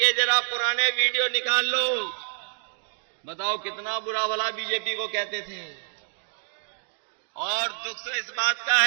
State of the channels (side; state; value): left; silent; digital silence